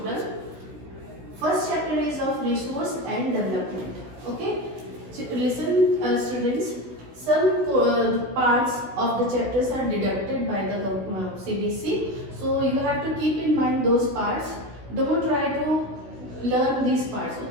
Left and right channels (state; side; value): late; left; 16 ms